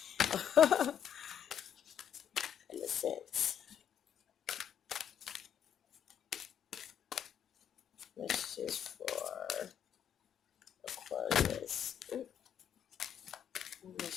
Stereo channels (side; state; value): right; quieter; 9.0 dB